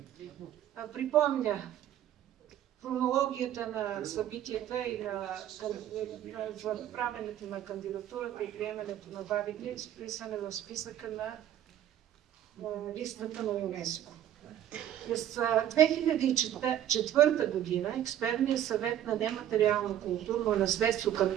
припомня хронологията на събитията и за правенето на кандидатурата и приемането на бабите, изписане в списъка на листата на ЮНЕСКО. През 2004 година Експертният съвет на нематериално културно наследство към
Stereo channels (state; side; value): quieter; left; 11.3 dB